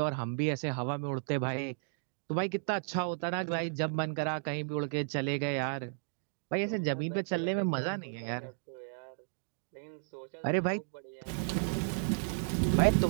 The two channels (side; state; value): left; silent; digital silence